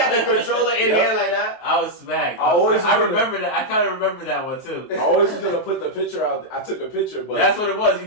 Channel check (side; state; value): right; late; 23 ms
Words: the controller in here like that. I was smacked. I remember that. I kind of remember that one too. I always was gonna put the picture out. I took a picture, but that's what it was. You